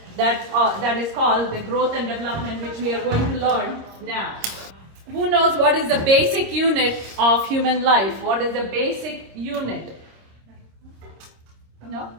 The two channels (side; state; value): left; late; 26 ms